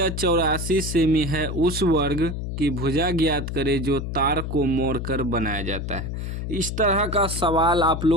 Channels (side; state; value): left; noise; hum, 5 dB below the sound